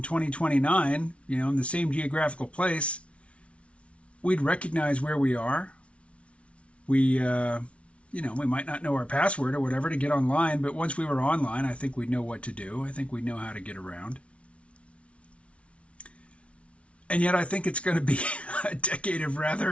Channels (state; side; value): late; right; 0.062 ms